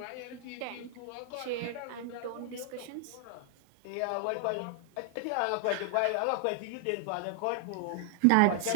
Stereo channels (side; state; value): both; different; correlation 0.00